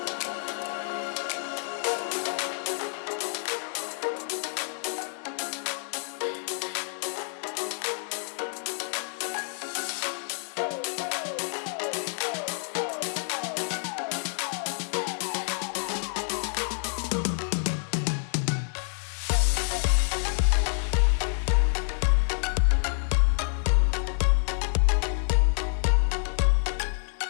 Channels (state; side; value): silent; right; digital silence